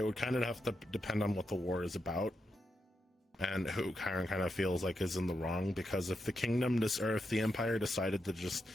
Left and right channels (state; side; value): normal; both; correlation 0.85